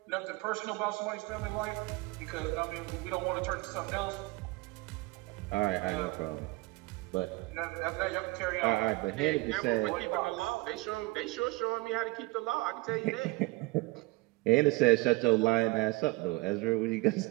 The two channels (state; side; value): quieter; left; 23.0 dB